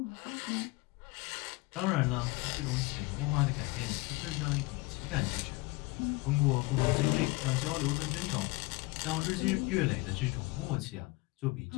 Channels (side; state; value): right; quieter; 22.7 dB